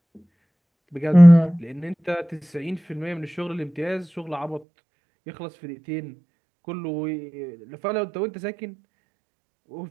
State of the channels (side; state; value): left; drops out; at 4.6 s